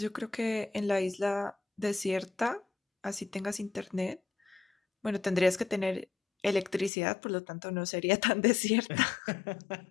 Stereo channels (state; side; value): drops out; right; at 6.9 s